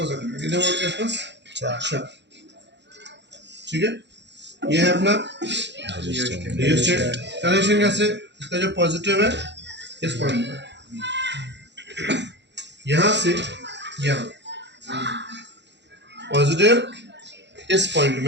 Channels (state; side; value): late; left; 0.51 ms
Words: रखना है। कितने वोल्ट के आसपास, 4। ठीक है, ये है अपना रियोस्टेट। कनेक्शन कैसे, इसका जो पॉजिटिव है इस पॉइंट पर, यहाँ से यहाँ, पॉजिटिव इस पॉइंट